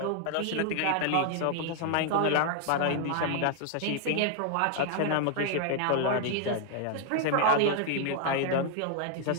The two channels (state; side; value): different; both; correlation 0.00